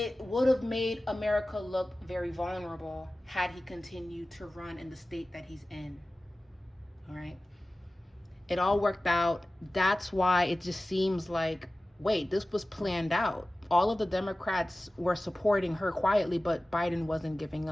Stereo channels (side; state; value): both; normal; correlation 0.97